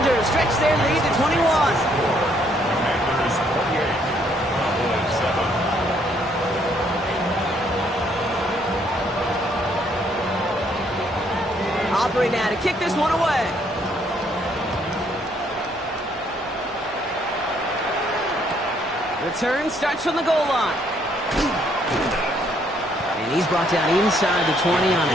stretch their lead to 21. Commanders 48, Cowboys 7. Aubrey now to kick this one away. Return starts from the goal line. And he's brought down inside the 20 on a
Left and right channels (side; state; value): both; normal; correlation 0.68